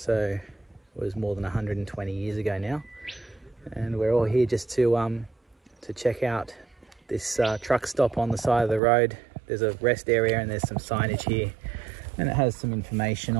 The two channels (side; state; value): left; drops out; at 8.8 s